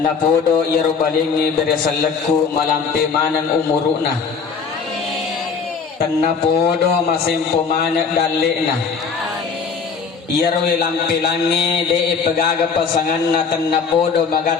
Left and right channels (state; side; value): quieter; right; 5.7 dB